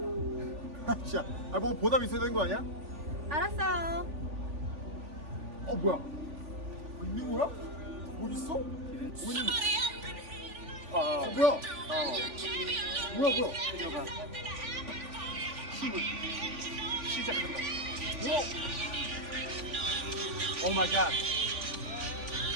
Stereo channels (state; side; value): late; left; 3.5 ms